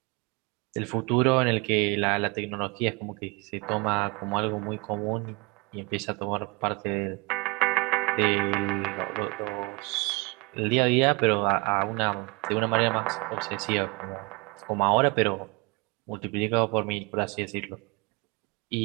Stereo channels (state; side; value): quieter; left; 27.6 dB